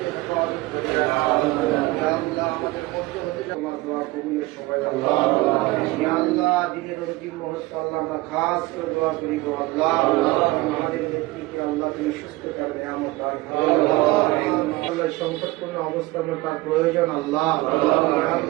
আমাদের মধ্যে হতে আমার দোয়া কবুলের সবাই আল্লাহ দিনের অন্তিম মুহূর্তে আল্লাহ আমরা খাস করে দোয়া করি গো আল্লাহ আমাদের নেতৃত্বে আল্লাহ তুমি সুস্থ করবে আমার সংকটপূর্ণ অবস্থার মধ্যে তার প্রয়োজন আল্লাহ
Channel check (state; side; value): quieter; left; 20.4 dB